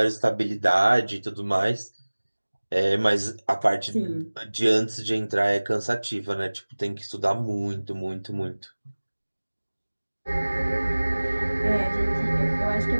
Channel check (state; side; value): inverted; both; correlation -1.00